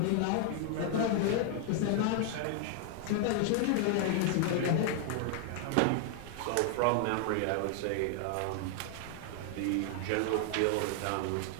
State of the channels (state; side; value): different; both; correlation 0.00